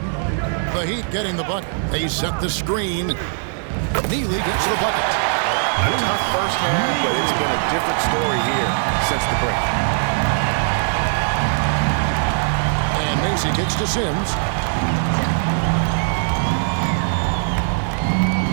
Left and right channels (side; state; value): left; silent; digital silence